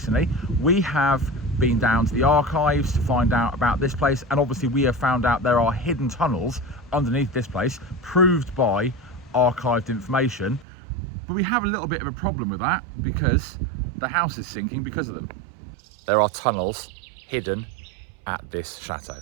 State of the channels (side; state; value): left; drops out; at 10.7 s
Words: We have been down to the archives to find out about this place, and obviously we have found out there are hidden tunnels underneath this place, proved by archived information. But we have a little bit of a problem with that because the house is sinking because of them. There are tunnels hidden at this chateau.